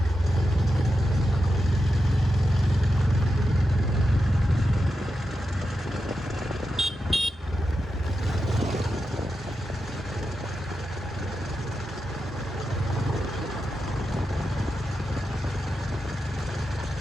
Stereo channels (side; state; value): both; normal; correlation 0.89